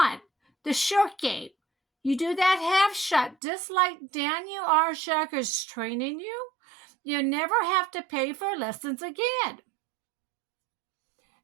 the short game. You do that half shot just like Daniel R. Shauger is training you. You never have to pay for lessons again.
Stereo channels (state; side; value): drops out; left; at 3.4 s